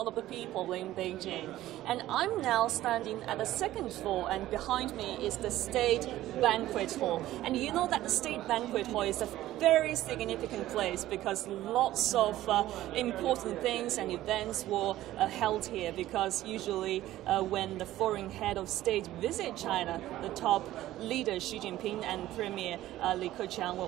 of the People in Beijing. And I'm now standing at the second floor, and behind me is the State Banquet Hall. And you know that the State Banquet Hall is a very significant place because lots of important things and events were held here, because usually when the foreign head of state visit China, the top leader Xi Jinping and Premier Li Keqiang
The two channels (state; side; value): quieter; left; 14.8 dB